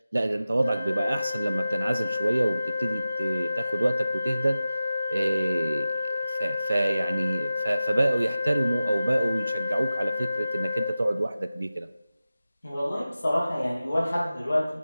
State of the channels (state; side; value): inverted; both; correlation -0.94